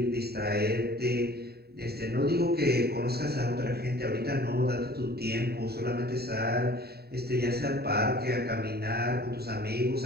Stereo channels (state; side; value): late; left; 0.46 ms